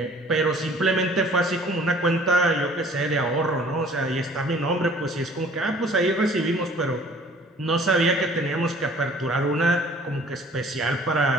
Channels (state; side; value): normal; both; correlation 0.52